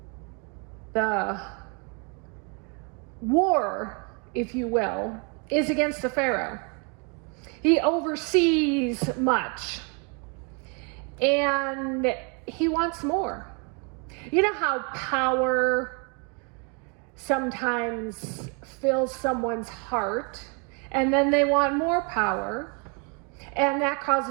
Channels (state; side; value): quieter; left; 35.3 dB